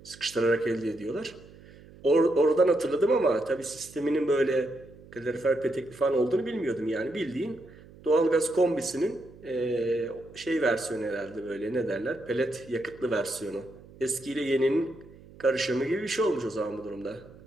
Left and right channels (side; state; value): right; noise; hum, 21 dB below the sound